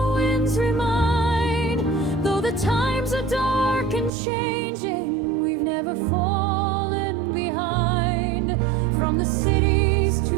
winds remind. Though the times are dark and changing, we've never fallen behind. From the cities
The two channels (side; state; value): left; drops out; at 4.1 s